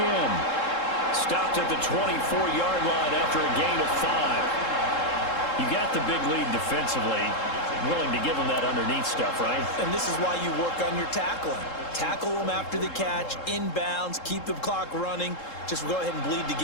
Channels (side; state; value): right; late; 3.7 ms